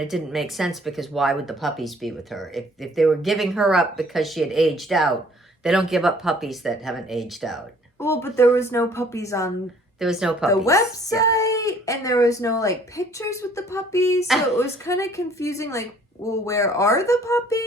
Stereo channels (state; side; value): normal; both; correlation 0.57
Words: didn't make sense because why would the puppies be with her? If they were giving her up because she had aged out, they don't give up puppies that haven't aged out. Well, but there was no puppies on the website, and there was no like pictures with the puppies, so it was kind of confusing. Like, well, where are the